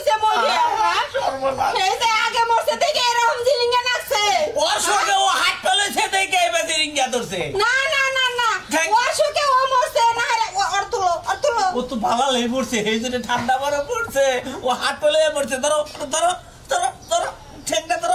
বলবি? এই যে আগে মরছে দেখে এরকম জিলিঙ্গা নাচছে। ওর সঙ্গে ও হাত তুলেছে দেখে এবার রিঙ্গা ধরছে। না না না না ওর শোকে ও মরছে না। ওর তুলো ও তো ভালো লেগে পড়ছে, এই জন্য ঠান্ডা বরফ পড়ছে, ও হাত তুলে পড়ছে। ধরো ধরো ধরো ধরো ঠেকটা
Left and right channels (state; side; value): identical; both; correlation 1.00